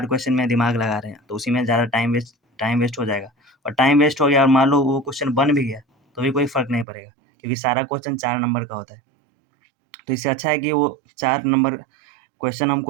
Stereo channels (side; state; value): left; drops out; at 6.9 s